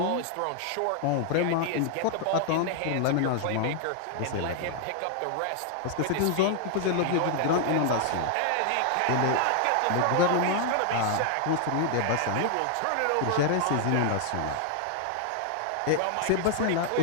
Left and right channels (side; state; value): both; different; correlation 0.00